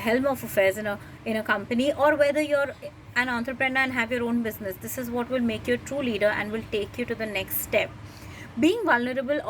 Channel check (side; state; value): both; identical; correlation 1.00